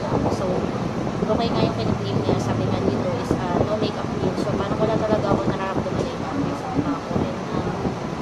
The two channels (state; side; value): identical; both; correlation 1.00